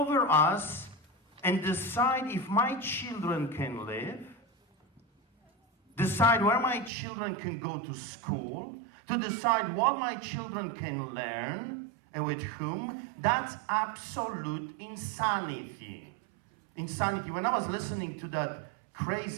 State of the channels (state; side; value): drops out; left; at 6.9 s